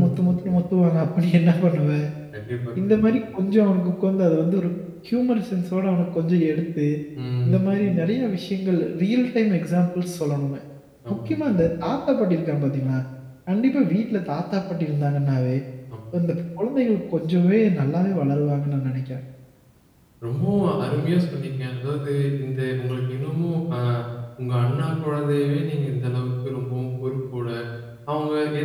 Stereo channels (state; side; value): identical; both; correlation 1.00